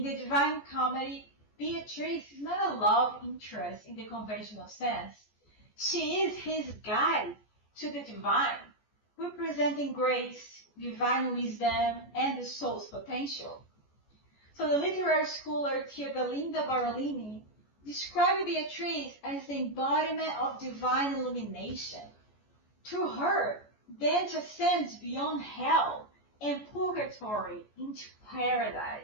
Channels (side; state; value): right; late; 14 ms